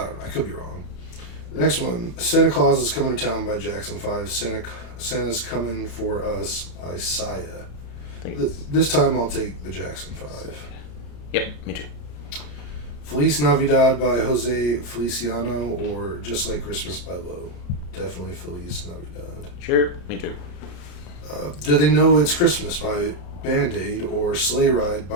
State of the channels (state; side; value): late; right; 34 ms